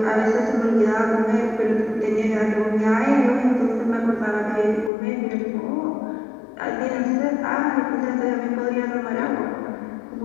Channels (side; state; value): right; drops out; at 4.9 s